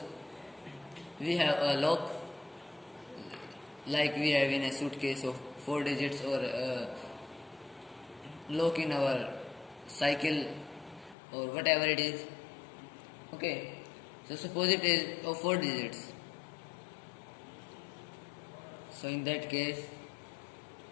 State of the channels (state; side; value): drops out; right; at 11.2 s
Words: we have a lock, like we have in a suitcase of 4 digits, or a lock in our cycle, or whatever it is. Okay, so suppose it is of 4 digits. So in that case,